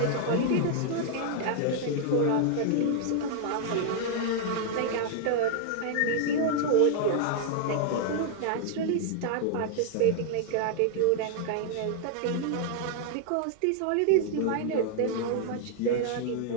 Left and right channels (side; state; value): both; different; correlation 0.00